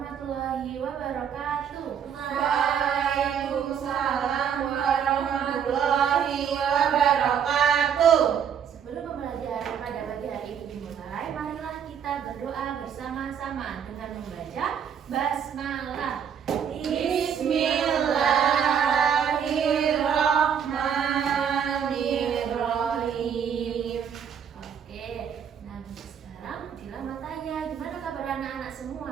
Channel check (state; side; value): quieter; left; 8.0 dB